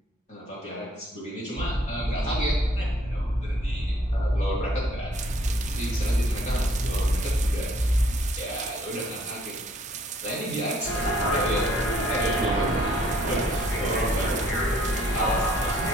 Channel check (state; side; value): normal; both; correlation 0.62